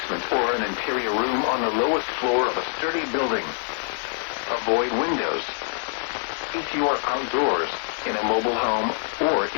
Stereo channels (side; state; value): right; silent; 62 dB below the other